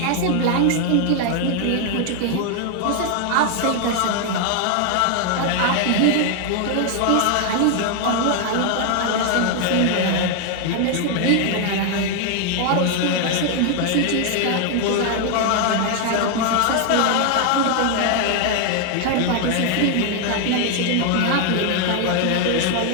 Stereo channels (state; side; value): different; both; correlation 0.00